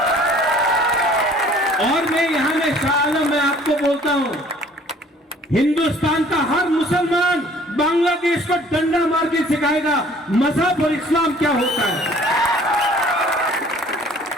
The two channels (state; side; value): normal; both; correlation 0.54